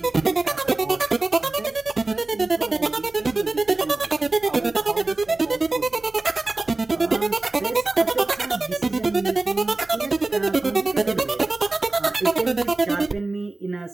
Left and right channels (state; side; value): quieter; left; 3.2 dB